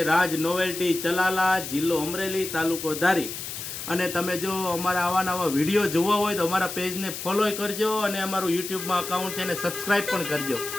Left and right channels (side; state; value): left; noise; hiss, 8 dB below the sound